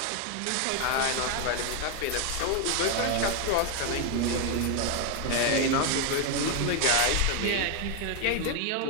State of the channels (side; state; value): both; different; correlation 0.01